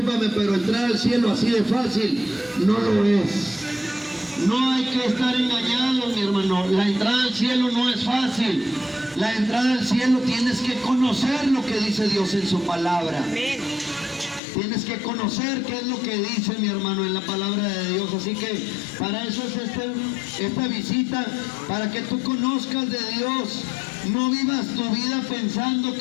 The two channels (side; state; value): right; drops out; at 14.4 s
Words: pero entrar al cielo así de fácil no lo es. No hay que estar engañados, mi hermano. La entrada al cielo no es fácil. La entrada al cielo tienes que conocer lo que dice Dios en su palabra. Amén. Tienes que conocer qué es lo que dice, mi hermano, en la palabra de Dios. Así que para eso es esta visita, para que tú conozcas de Dios. No vivas tu vida pensando